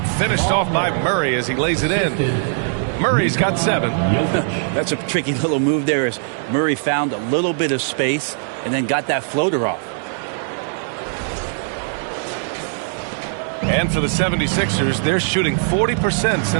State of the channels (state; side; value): silent; left; digital silence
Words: finished off by Murray as he lays it in. Murray's got 7. That's a tricky little move there as Murray found a little bit of space and then got that floater off. And for the 76ers, they're shooting 40%